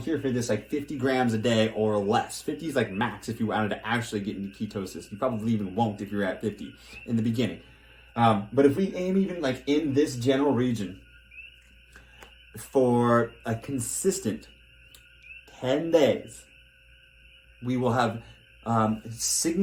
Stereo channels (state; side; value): identical; both; correlation 1.00